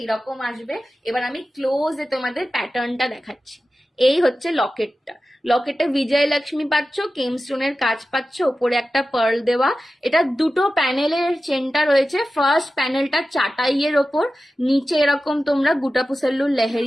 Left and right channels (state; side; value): normal; both; correlation 0.94